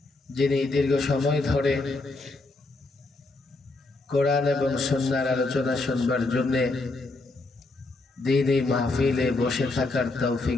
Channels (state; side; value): quieter; right; 3.2 dB